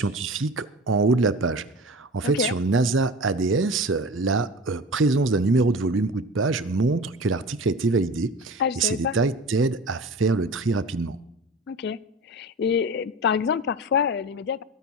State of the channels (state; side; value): normal; both; correlation 0.34